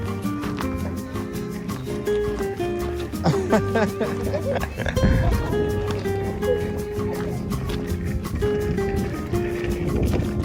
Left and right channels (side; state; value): both; identical; correlation 1.00